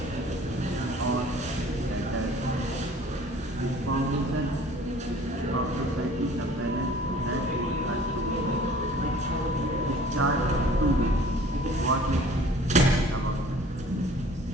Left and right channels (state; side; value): normal; both; correlation 0.50